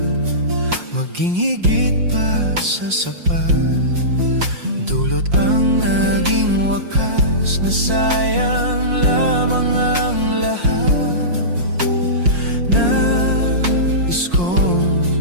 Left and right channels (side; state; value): left; late; 5.6 ms